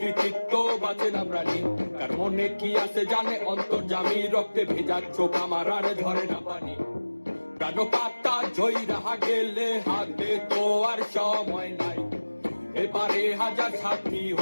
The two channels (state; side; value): inverted; both; correlation -1.00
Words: বাঁচে না প্রাণী কার মনে কি আছে জানে অন্তর্জামী রক্তে ভেজা চোখ আমার আর ঝরে না পানি প্রাণ পাতা ঝই রাহা গেলে হাতে তো আর সময় নাই এবারে হাজার সাথী